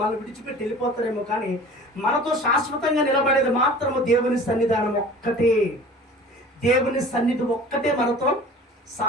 విడిచిపెట్టి వెళ్ళిపోతారేమో, కానీ మనతో శాశ్వతంగా నిలబడేది మాత్రము దేవుని సన్నిధానం ఒక్కటే. దేవుని సన్నిధి ఒక్కటే మనతో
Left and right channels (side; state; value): both; normal; correlation 0.43